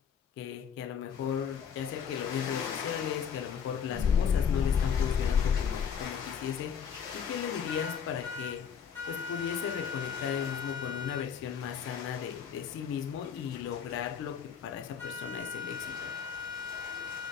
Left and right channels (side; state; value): right; quieter; 7.3 dB